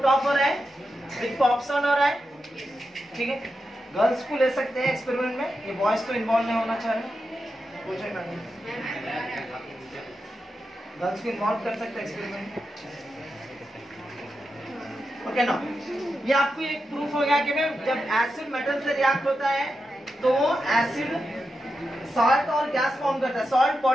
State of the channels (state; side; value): normal; both; correlation 0.88